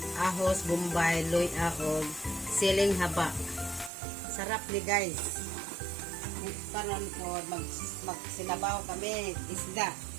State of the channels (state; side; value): drops out; left; at 3.9 s